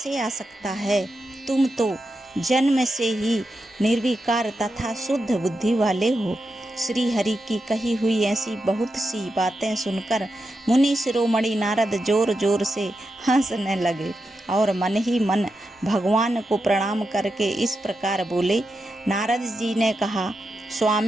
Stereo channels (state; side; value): normal; both; correlation 0.87